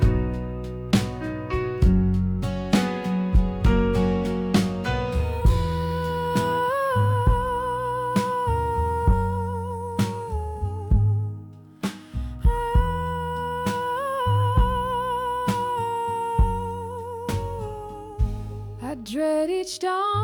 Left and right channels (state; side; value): identical; both; correlation 1.00